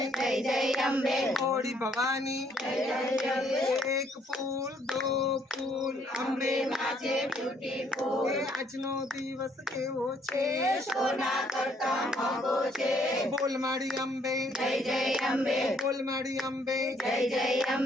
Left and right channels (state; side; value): normal; both; correlation 0.66